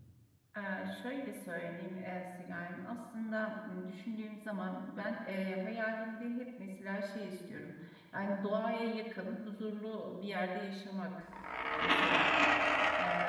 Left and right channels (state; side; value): identical; both; correlation 1.00